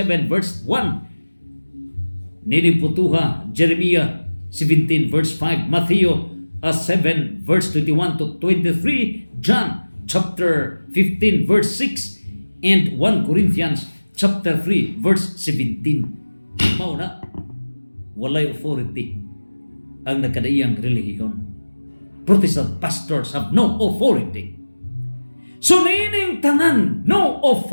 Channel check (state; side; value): inverted; both; correlation -1.00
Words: verse 1. Niliputuha Jeremiah 17 verse 5, Matthew 7 verse 21 to 23, John chapter 15 verse 6, and 1 Corinthians chapter 3 verse 17. Mao na walay authority ang nakadaiyang relihiyon. Protestant pastors have no authority. So nining tanan no